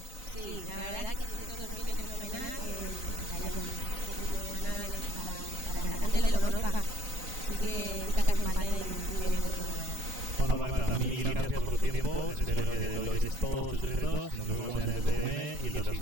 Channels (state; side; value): late; left; 4.0 ms